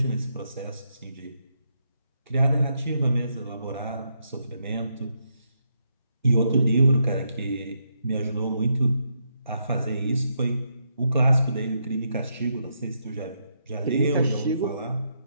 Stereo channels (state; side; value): inverted; both; correlation -0.79